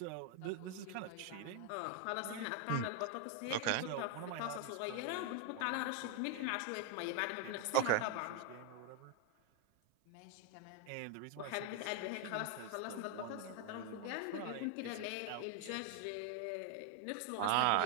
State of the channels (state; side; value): different; both; correlation 0.01